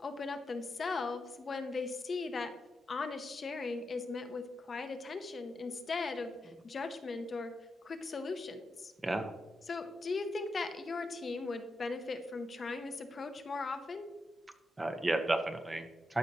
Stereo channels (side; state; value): both; normal; correlation 0.86